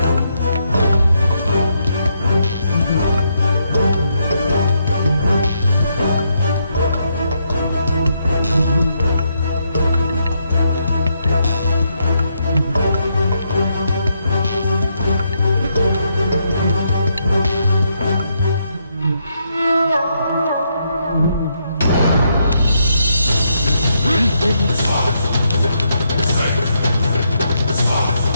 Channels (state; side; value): inverted; both; correlation -0.78